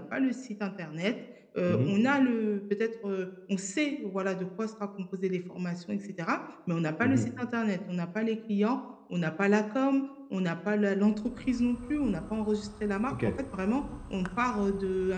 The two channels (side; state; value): both; identical; correlation 1.00